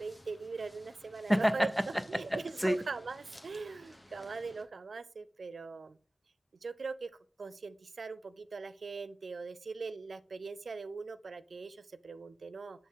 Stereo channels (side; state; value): both; normal; correlation 0.97